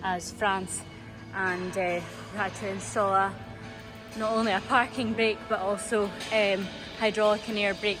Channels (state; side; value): identical; both; correlation 1.00